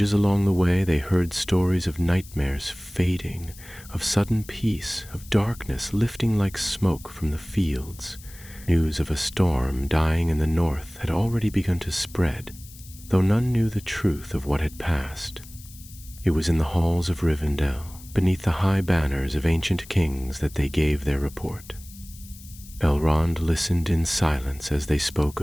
along the way they heard stories of nightmares fading, of sudden peace, of darkness lifting like smoke from the fields. News of a storm dying in the north had already begun to spread, though none knew the truth of what had passed. It was in the halls of Rivendell, beneath the high banners of ancient kings, that they gave their report. Elrond listened in silence as they spoke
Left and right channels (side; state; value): left; noise; hiss, 20 dB below the sound